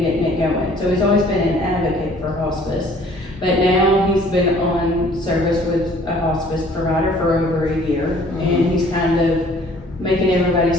getting it going. So he's always been an advocate for hospice. But now he's been on service with a hospice provider for over a year, and he's kind of making everybody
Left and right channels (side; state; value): both; normal; correlation 0.55